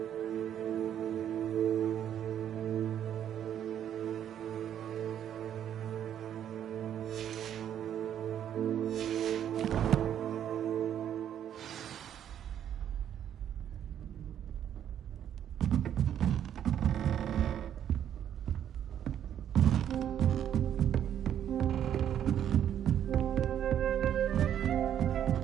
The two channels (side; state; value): left; quieter; 9.9 dB